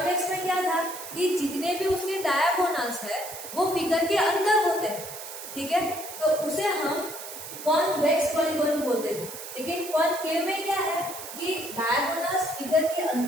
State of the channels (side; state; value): right; noise; hiss, 11 dB below the sound